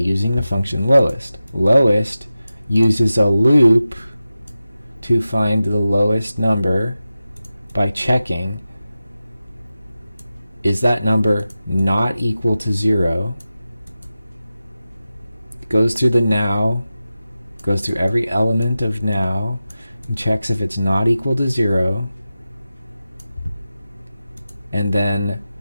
the function lowest. Lowest uses a loop to find the lowest number by checking, is that number not equal to 0? It goes through the now, goes through every element of now, and checks if it's not equal to 0, and then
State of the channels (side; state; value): both; inverted; correlation -0.93